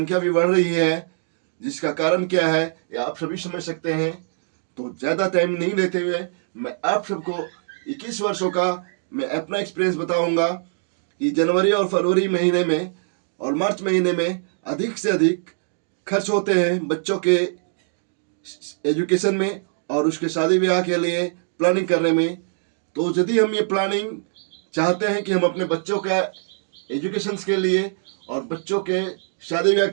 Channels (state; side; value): silent; left; digital silence